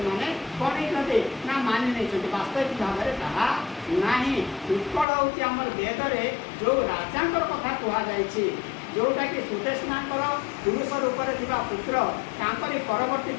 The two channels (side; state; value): right; drops out; at 5.1 s